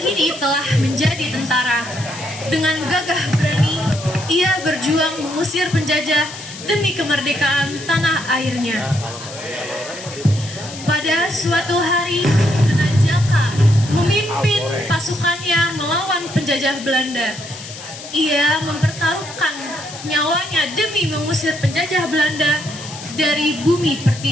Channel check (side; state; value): left; noise; hiss, 13 dB below the sound